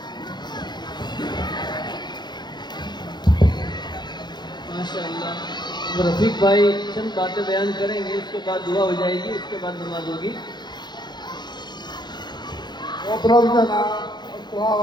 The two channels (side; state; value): right; late; 0.21 ms